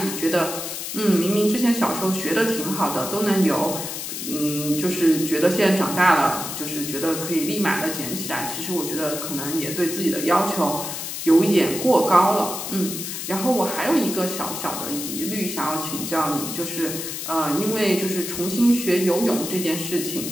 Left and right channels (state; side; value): noise; left; hiss, 6 dB below the sound